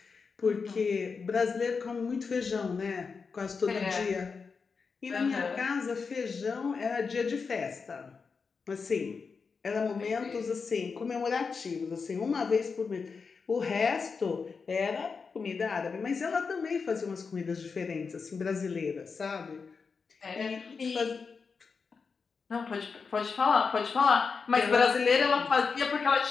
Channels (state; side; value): quieter; right; 5.1 dB